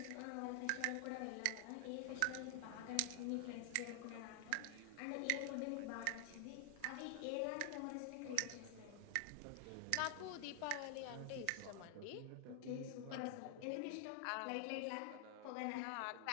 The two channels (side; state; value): both; different; correlation 0.00